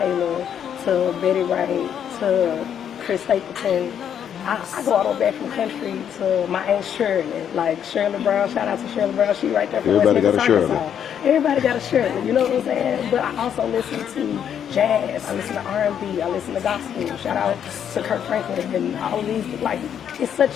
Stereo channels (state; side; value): quieter; right; 8.9 dB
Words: to Betty Wright to Chris Stapleton. I go all the way back from country to my Aunt Shirley, like Shirley Brown. Shout out to Shirley Brown. She right there from West Memphis, Arkansas. Everybody got a Shirley, you know what I'm saying? But I also listen to jazz. I listen to R&B. I listen to gospel. Shout out to Kirk Franklin and all of these. Like, it's